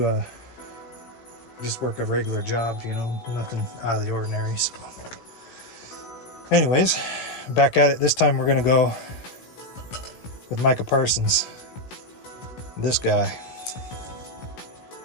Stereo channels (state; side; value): late; right; 16 ms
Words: just work a regular job, you know, nothing out of the ordinary. So, anyways, back at it. This time we're gonna go with Micah Parsons. This guy.